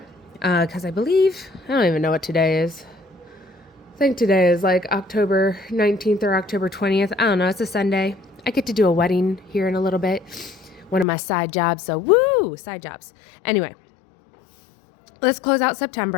because I believe, I don't even know what today is. I think today is like October 19th or October 20th. I don't know. It's a Sunday. I get to do a wedding here in a little bit. One of my side jobs. So woo, side jobs. Anyway, let's close out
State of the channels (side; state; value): right; drops out; at 11.1 s